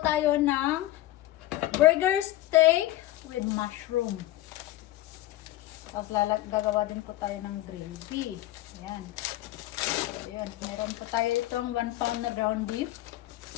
tayo ng burger steak with mushroom. Tapos gagawa din po tayo ng gravy. Ayan. So, ayan. Meron po tayo itong 1 pound na ground beef.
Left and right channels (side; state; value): right; quieter; 15.6 dB